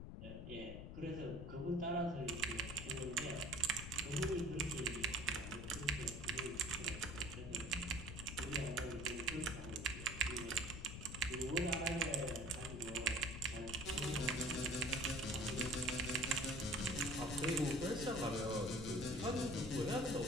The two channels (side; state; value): left; noise; rumble, 8 dB below the sound